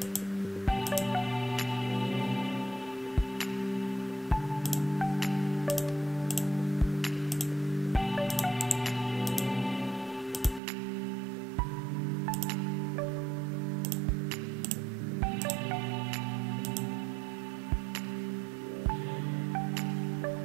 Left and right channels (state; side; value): drops out; left; at 10.6 s